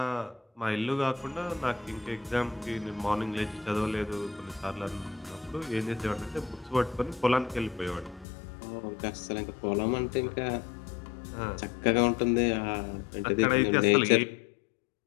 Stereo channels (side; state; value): right; drops out; at 8.2 s